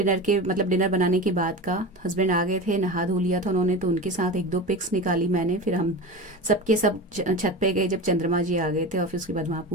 के, मतलब डिनर बनाने के बाद का। हस्बैंड आ गए थे, नहा धो लिया था उन्होंने, तो उनके साथ 1-2 पिक्स निकाली मैंने। फिर हम सबके सब छत पे गए जब चंद्रमा जी आ गए थे, और फिर उसके बाद वहाँ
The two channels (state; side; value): normal; both; correlation 0.28